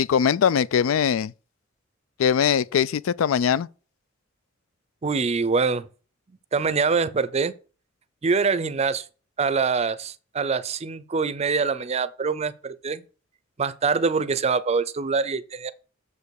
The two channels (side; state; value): both; normal; correlation -0.05